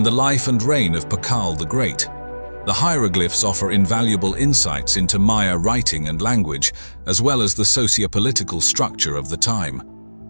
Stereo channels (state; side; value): inverted; both; correlation -1.00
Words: the life and reign of Tikal the Great. The hieroglyphs offer invaluable insights into Maya writing and language, as well as the socio-political structure of the time.